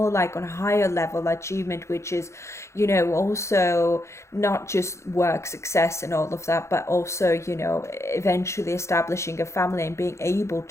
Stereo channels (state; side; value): late; right; 0.14 ms